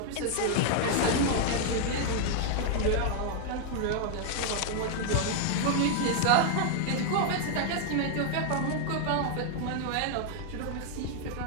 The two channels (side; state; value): both; different; correlation 0.00